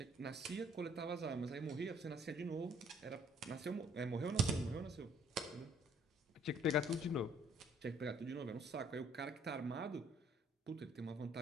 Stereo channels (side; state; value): both; normal; correlation 0.61